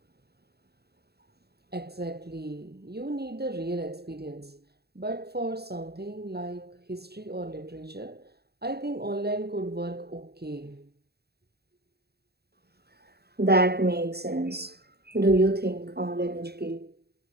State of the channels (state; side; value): late; left; 0.47 ms